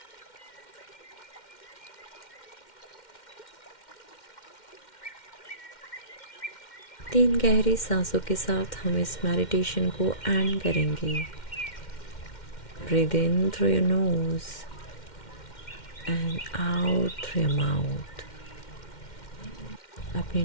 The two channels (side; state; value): right; late; 2.1 ms